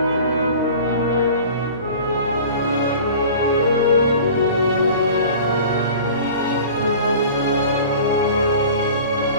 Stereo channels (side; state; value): both; inverted; correlation -0.42